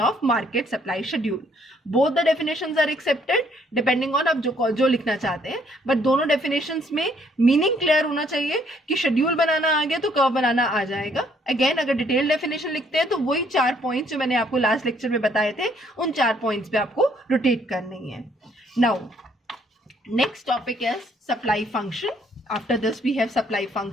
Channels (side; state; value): both; normal; correlation 0.66